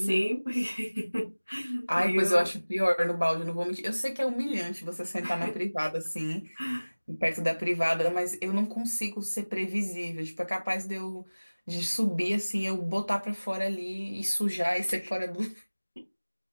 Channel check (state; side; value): inverted; both; correlation -1.00